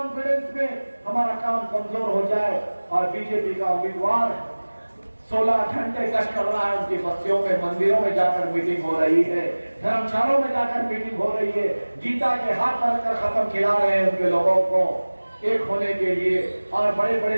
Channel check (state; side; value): inverted; both; correlation -1.00